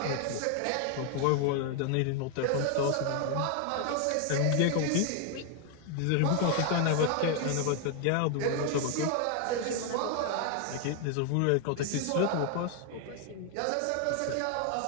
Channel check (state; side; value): different; both; correlation 0.00